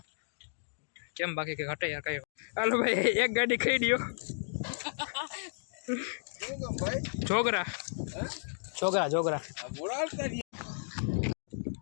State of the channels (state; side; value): silent; right; digital silence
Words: કેમ બાકી કે ઘટે યાર કઈ હાલો ભાઈ એક ગાડી ખાઈ દો છોકરા છોકરા છોકરા